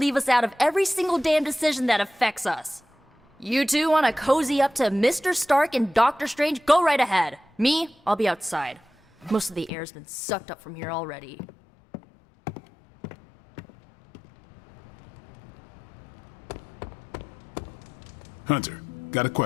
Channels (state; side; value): drops out; right; at 9.7 s